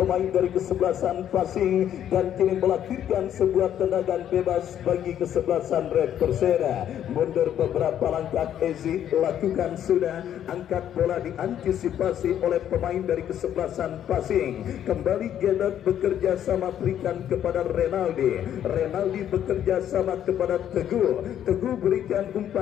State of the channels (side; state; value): right; quieter; 10.4 dB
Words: dari kesebelasan passing, dan kini melahirkan sebuah tendangan bebas bagi kesebelasan Red Perseda. Mundur beberapa langkah Ezi, lakukan sudah, angkat bola diantisipasi oleh pemain dari kesebelasan passing. Kembali Gedot bekerja sama berikan kepada Renaldi. Renaldi bekerja sama kepada Teguh. Teguh berikan